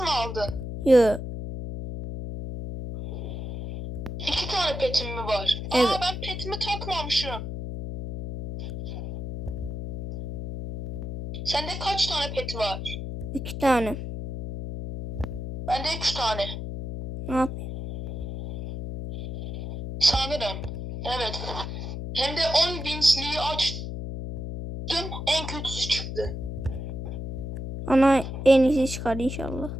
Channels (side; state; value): left; noise; hum, 6 dB below the sound